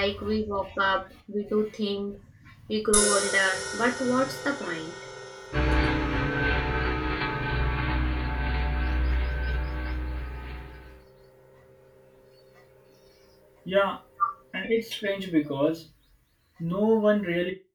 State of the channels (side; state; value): both; identical; correlation 1.00